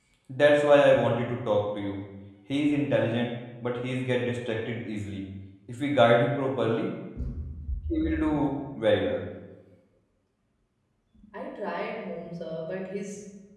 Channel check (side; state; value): both; identical; correlation 1.00